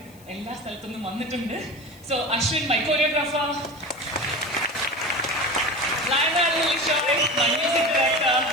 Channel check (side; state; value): left; noise; hiss, 26 dB below the sound